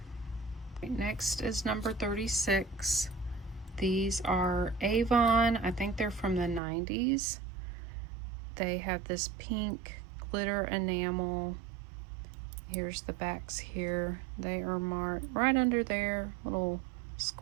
Next is number 36. These are Avon. I think they're from the 90s. They have this pink glitter enamel. Here's the backs here. They are marked right under there, little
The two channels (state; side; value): drops out; left; at 6.6 s